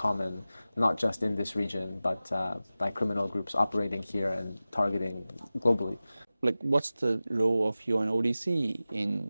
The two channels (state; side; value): inverted; both; correlation -0.96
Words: not just in this region, but by criminal groups operating here and targeting globally. like what's the role of UNODC in